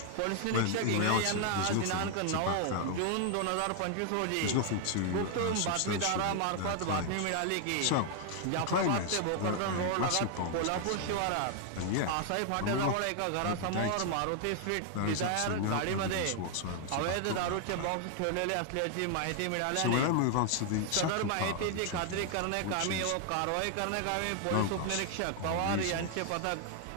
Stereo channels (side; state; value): both; different; correlation 0.00